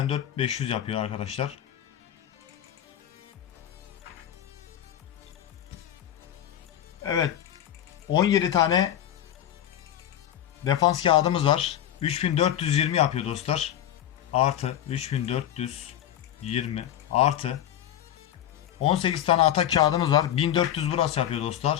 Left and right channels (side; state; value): right; quieter; 11.1 dB